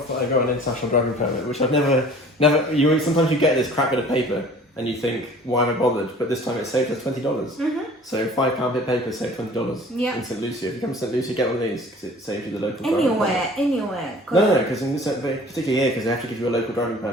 that I got an international driving permit, which I've never. Sometimes you get this crap bit of paper and you think, why am I bothered? But this time it saved us $20. Mm-hmm. So £5 bit of paper saved $20 in Saint Lucia. If you come to Saint Lucia, get one of these because it saves you the local driving permit. Anywhere. No, because particularly here, because they have to give you a local driving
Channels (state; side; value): normal; both; correlation 0.48